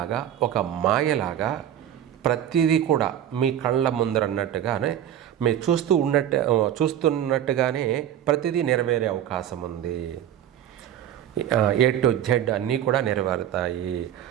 ఒక మాయలాగా ప్రతిదీ కూడా మీ కళ్ళ ముందరన్నట్టుగానే మీరు చూస్తున్నట్టుగానే ప్రతిదీ నెరవేరే అవకాశం ఉంది. ఏ టు జెడ్ అన్నీ కూడా నెరవేరుతాయి.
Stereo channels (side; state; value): left; quieter; 10.7 dB